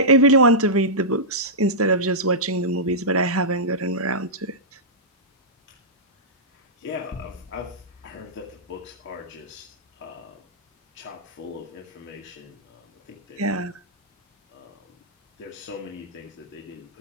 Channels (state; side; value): normal; both; correlation -0.14